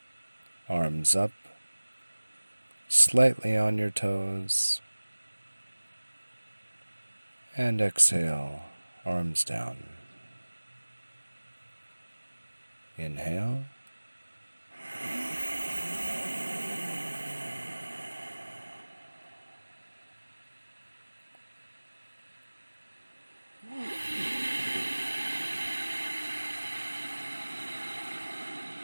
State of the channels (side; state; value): both; inverted; correlation -1.00